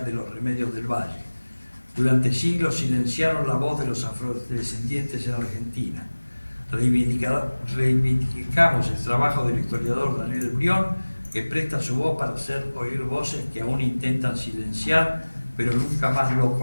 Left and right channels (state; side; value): inverted; both; correlation -1.00